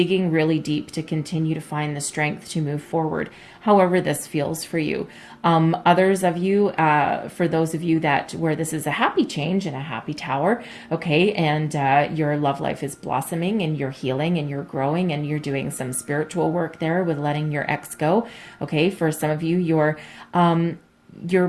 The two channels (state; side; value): identical; both; correlation 1.00